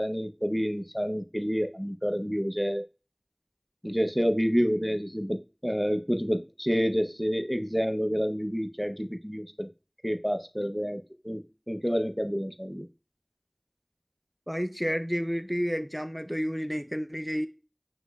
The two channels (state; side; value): identical; both; correlation 1.00